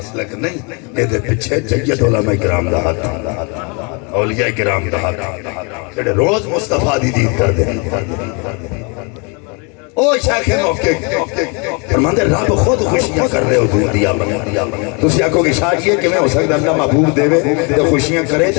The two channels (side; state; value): right; quieter; 33.0 dB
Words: نہیں، اے دے پیچھے جید علماء کرام دا ہاتھ، اولیاء کرام دا ہاتھ، جڑے روز مصطفیٰ دی دید کر دے۔ او شیخ موقع فرماندے رب خود خوشیاں کر رہے حضور دی آمد، تسی آکھو کہ شاید یہ کیویں ہو سکتا اللہ محبوب دے تے خوشیاں کرے تے